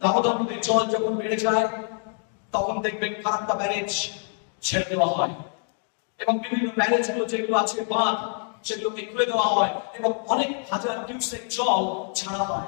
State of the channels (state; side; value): silent; right; 55 dB below the other